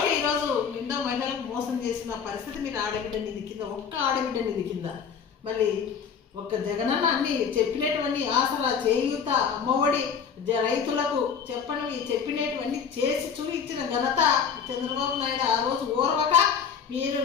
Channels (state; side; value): quieter; right; 6.9 dB